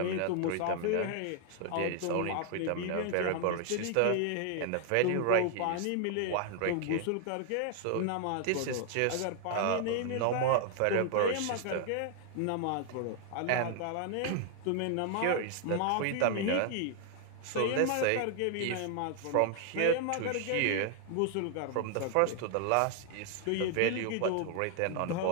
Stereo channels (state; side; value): different; both; correlation 0.00